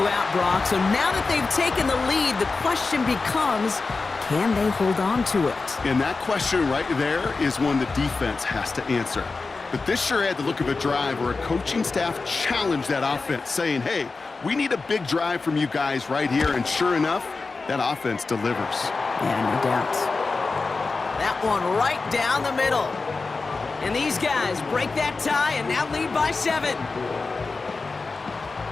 Brock. So now that they've taken the lead, the question becomes, can they hold on to it? And that question right there is one the defense has to answer. But this sure had the look of a drive where a coaching staff challenged that offense, saying, hey, we need a big drive from you guys right here. And sure enough, that offense delivers. Yeah, no doubt. That one right down the middle. And these guys break that tie and now lead by 7.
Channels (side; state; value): right; quieter; 4.0 dB